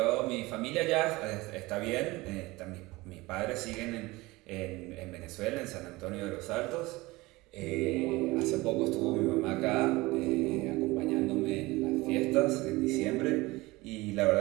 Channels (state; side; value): quieter; left; 21.3 dB